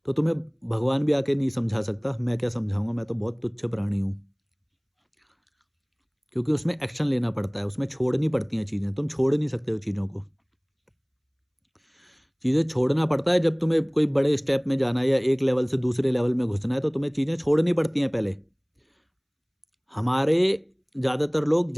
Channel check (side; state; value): both; identical; correlation 1.00